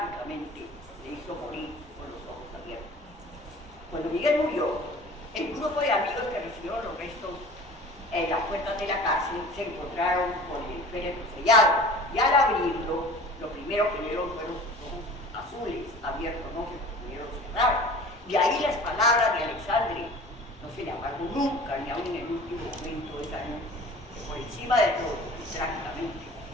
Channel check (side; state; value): both; normal; correlation 0.43